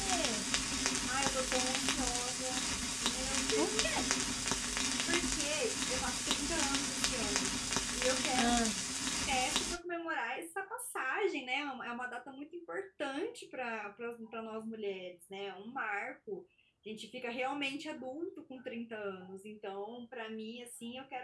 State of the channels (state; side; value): identical; both; correlation 1.00